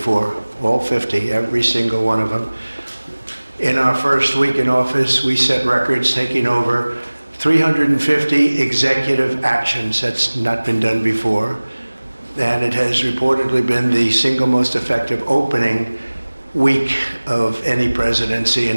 All 50, every single one of them. In our first week in office, we set records, taking over 350 executive actions. That's not been done before. And it has reportedly been the single most effective opening week of any presidency in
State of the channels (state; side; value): inverted; both; correlation -1.00